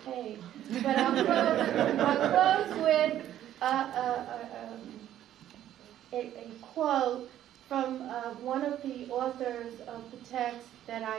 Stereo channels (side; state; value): left; quieter; 11.8 dB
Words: page, but I'll close with a quote from one of the authors of the text that